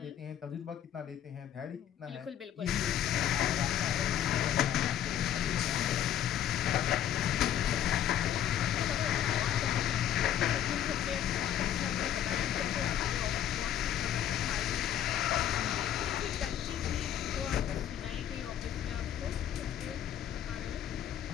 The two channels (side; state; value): right; quieter; 10.5 dB